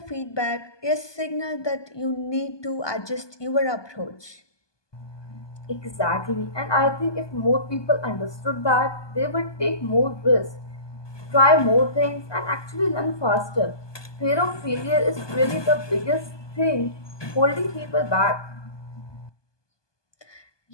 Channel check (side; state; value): right; late; 1.2 ms